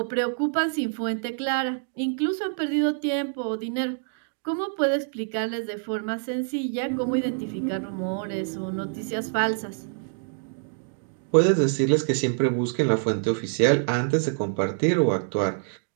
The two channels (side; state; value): left; silent; digital silence